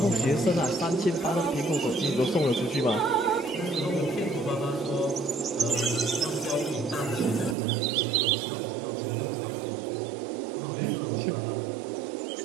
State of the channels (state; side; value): drops out; left; at 7.6 s